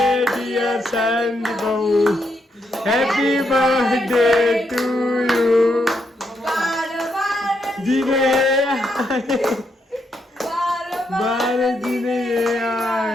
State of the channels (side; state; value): both; normal; correlation 0.79